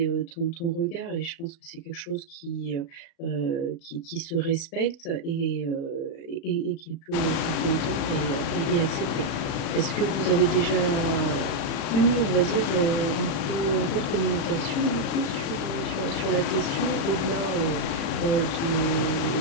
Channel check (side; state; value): right; late; 37 ms